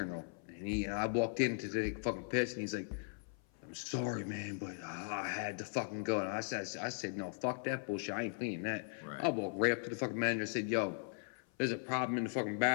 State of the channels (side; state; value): right; silent; 52 dB below the other